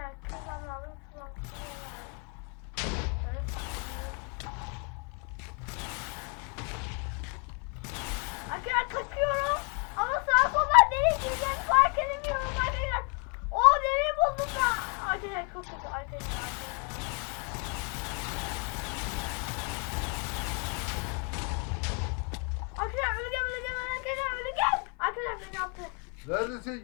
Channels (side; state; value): right; quieter; 36.5 dB